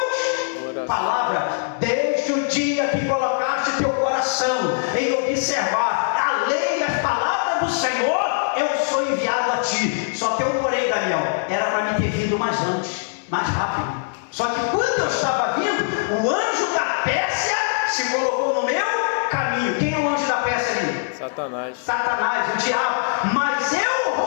palavras. Desde o dia que colocaste teu coração em observar a lei e as palavras do Senhor, eu sou enviado a ti. Só tem um porém, Daniel. Era para mim ter vindo mais antes, mais rápido. Só que quando eu estava vindo, o anjo da Pérsia se colocou no meu caminho. Quem é o anjo da Pérsia ali? Satanás. Satanás, o diabo. Mas eu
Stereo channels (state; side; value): silent; right; 64 dB below the other